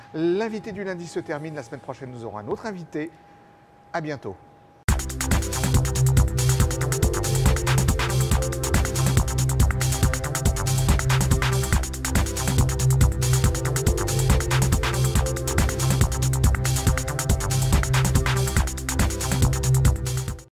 L'invité du lundi se termine. La semaine prochaine, nous aurons un autre invité. À bientôt.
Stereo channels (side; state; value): both; identical; correlation 1.00